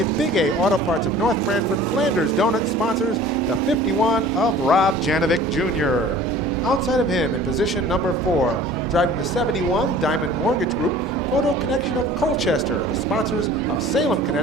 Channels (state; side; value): normal; both; correlation 0.46